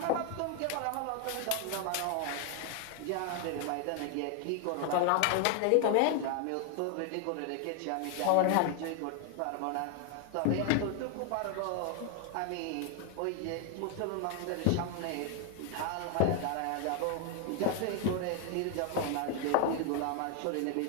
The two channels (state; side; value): different; both; correlation 0.01